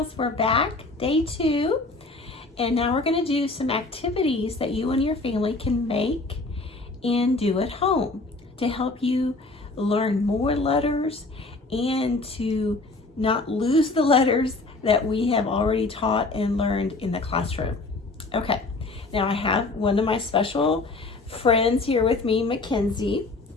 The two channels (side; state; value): right; quieter; 3.3 dB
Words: we're back, day 2, and now we're going to do some activities that you and your family can make and do at home to help you learn more letters and to not lose the letters that we have already taught and learned in the classroom. Okay, now I have one of my special friends here with me, Mackenzie.